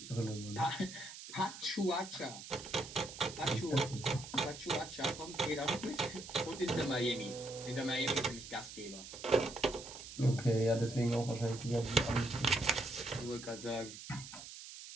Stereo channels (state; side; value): noise; right; hiss, 12 dB below the sound